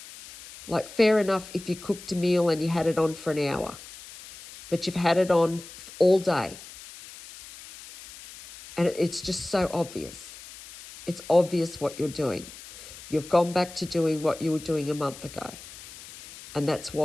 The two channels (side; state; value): left; noise; hiss, 16 dB below the sound